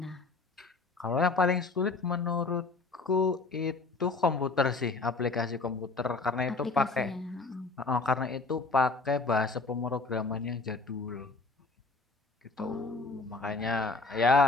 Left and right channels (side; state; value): right; quieter; 3.7 dB